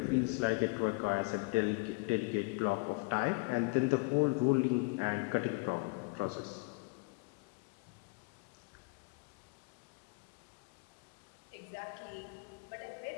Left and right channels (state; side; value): quieter; right; 30.0 dB